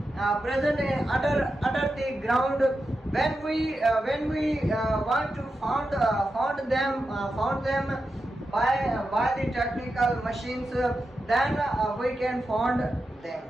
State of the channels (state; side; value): normal; both; correlation 0.89